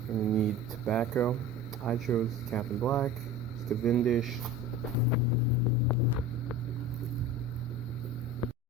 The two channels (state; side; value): normal; both; correlation 0.35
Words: And you need tobacco. I chose Captain Black, Cavendish.